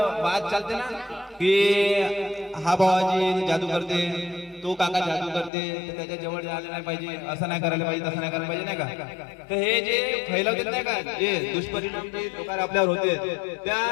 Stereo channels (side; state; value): right; drops out; at 5.5 s